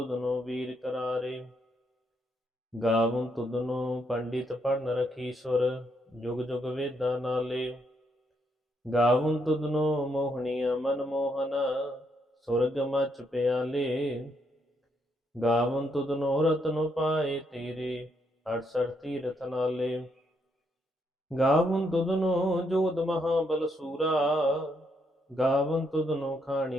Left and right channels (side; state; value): both; normal; correlation 0.76